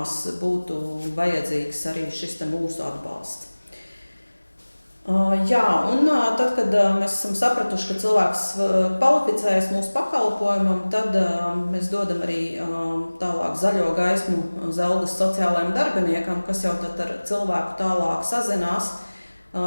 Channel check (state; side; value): inverted; both; correlation -1.00